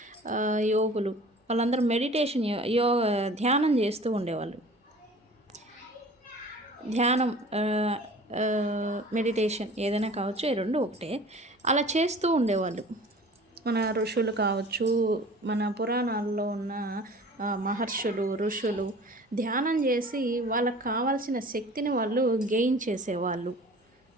యోగులు వాళ్ళందరూ మెడిటేషన్, ధ్యానం చేస్తూ ఉండేవాళ్ళు. ధ్యానం, మెడిటేషన్ ఏదైనా కావచ్చు, ఈ రెండు ఒకటే. అలా చేస్తూ ఉండేవాళ్ళు మన ఋషులు కావచ్చు, మన పురాణాల్లో ఉన్న మహర్షులు, ఋషులు ధ్యానం చేసి వాళ్ళకు కావాల్సిన శక్తిని వాళ్ళు గెయిన్ చేసేవాళ్ళు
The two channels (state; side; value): normal; both; correlation 0.45